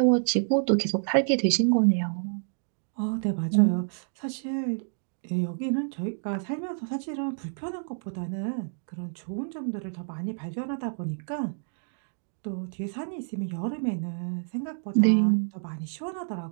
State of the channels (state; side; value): silent; left; digital silence